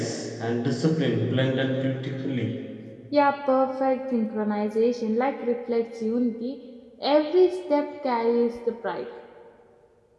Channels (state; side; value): identical; both; correlation 1.00